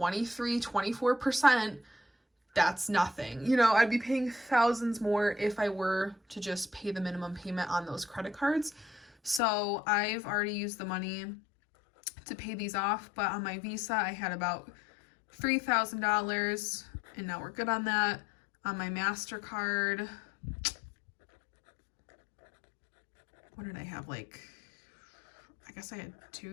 that's nothing. You know, I'd be paying thousands more if I were to just pay the minimum payment on those credit cards. So I've already used the money to pay these off, but on my Visa I had about $3,000, and now we're good on that. On my MasterCard, what did I have? Like, I guess I had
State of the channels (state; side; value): drops out; right; at 9.4 s